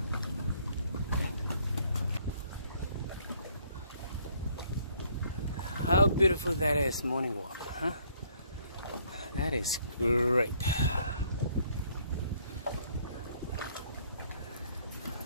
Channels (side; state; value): both; inverted; correlation -0.64